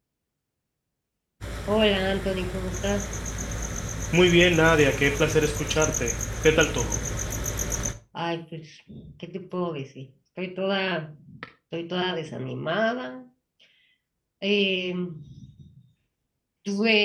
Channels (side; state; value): both; identical; correlation 1.00